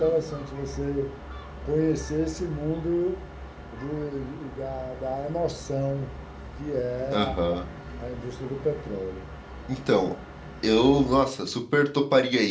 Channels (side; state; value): both; identical; correlation 1.00